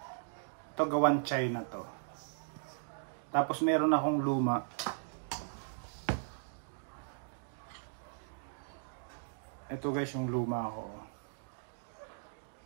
gawan China to. Tapos meron akong luma. Ito guys yung luma ko.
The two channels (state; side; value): silent; left; digital silence